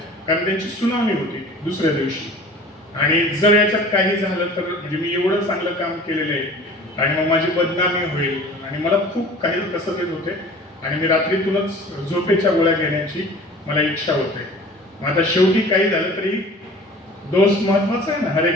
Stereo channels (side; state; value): both; normal; correlation 0.44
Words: कारण त्यांची सुनावणी होती दुसऱ्या दिवशी आणि जर याच्यात काही झालं तर म्हणजे मी एवढं चांगलं काम केलेलं आहे आणि मग माझी बदनामी होईल आणि मला खूप काही कसं येत होते आणि मी रात्रीतूनच झोपेच्या गोळ्या घेण्याची मला इच्छा होते. मग आता शेवटी काही झालं तरी दोस्त महत्वाचा आहे ना, हर